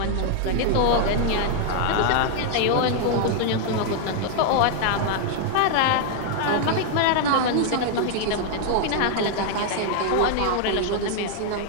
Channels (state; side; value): different; both; correlation 0.00